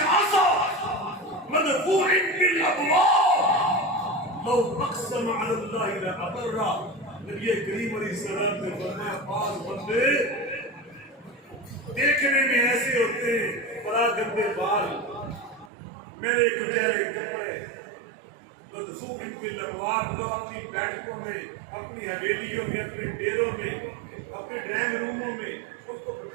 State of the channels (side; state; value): left; drops out; at 15.7 s